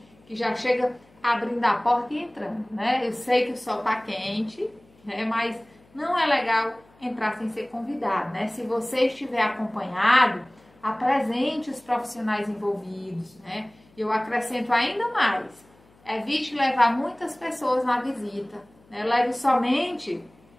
que já chega abrindo a porta e entrando, né? Eu sei que o sol está quente, né, mas não é legal entrar sem ser convidado, né? Se você estiver acompanhado, apresente os profissionais envolvidos, né? Eu acrescento ainda mais. Evite levar muitas pessoas na visita, né? Leve somente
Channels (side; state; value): left; noise; hum, 30 dB below the sound